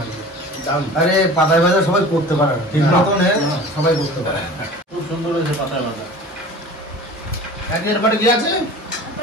লাগছে আরে পাতায় ভাজা সবাই করতে পারে না ঠিক মতন সবাই করতে পারে খুব সুন্দর হয়েছে পাতায় ভাজা এরপরে কি আছে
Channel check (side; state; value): both; normal; correlation 0.40